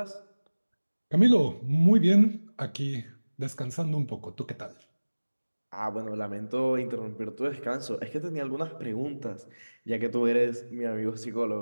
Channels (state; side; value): inverted; both; correlation -1.00